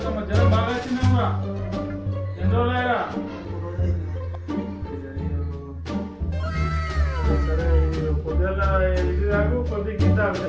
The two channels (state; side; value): identical; both; correlation 1.00